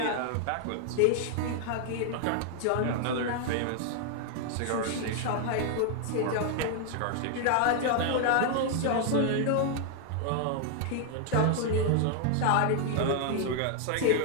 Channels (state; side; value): different; both; correlation 0.00